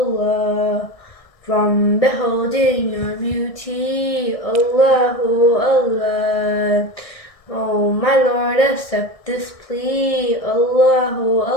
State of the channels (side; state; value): right; late; 1.6 ms